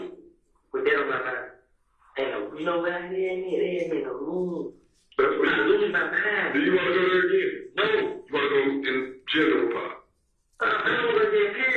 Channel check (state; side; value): identical; both; correlation 1.00